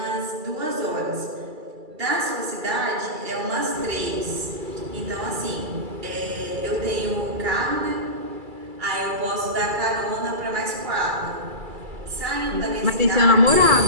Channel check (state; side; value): late; left; 2.3 ms